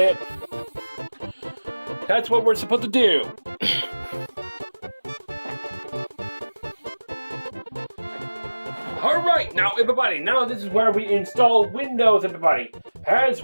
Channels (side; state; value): both; inverted; correlation -1.00